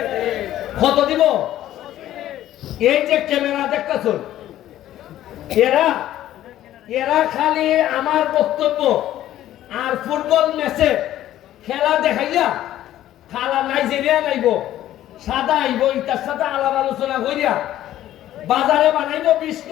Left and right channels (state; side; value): quieter; right; 13.1 dB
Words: কত দিব এই যে ক্যামেরা দেখতেছ এরা খালি আমার বক্তব্য আর ফুটবল ম্যাচে খেলা দেখাইয়া খালা নাইজেরিয়া নাইব সাদা আইব ইটার সাথে আলাপ আলোচনা করিয়া বাজারে বানাইব 20